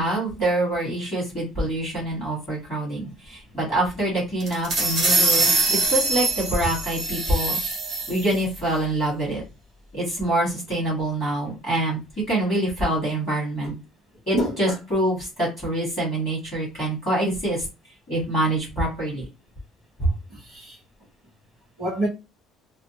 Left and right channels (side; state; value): both; normal; correlation 0.54